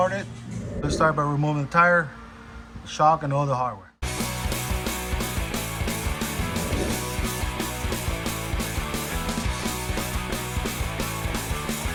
Let's start by removing the tire, shock, and all the hardware.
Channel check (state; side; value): identical; both; correlation 1.00